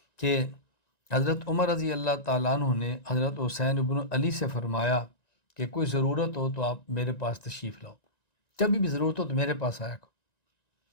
کہ حضرت عمر رضی اللہ تعالیٰ عنہ نے حضرت حسین ابن علی سے فرمایا کہ کوئی ضرورت ہو تو آپ میرے پاس تشریف لاؤ، جب بھی ضرورت ہو تو میرے پاس آیا کرو۔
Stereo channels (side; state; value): right; late; 1.9 ms